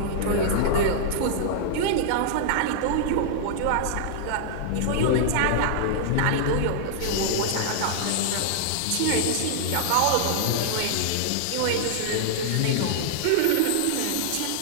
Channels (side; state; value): both; different; correlation -0.01